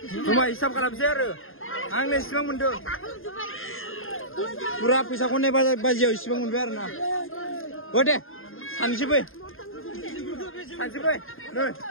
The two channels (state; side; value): late; right; 0.60 ms